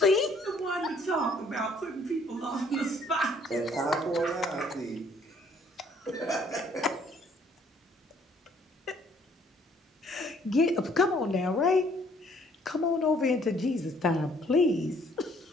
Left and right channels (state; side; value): normal; both; correlation 0.62